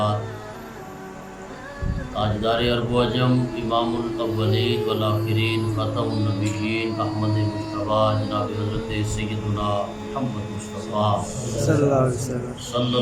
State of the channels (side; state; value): both; identical; correlation 1.00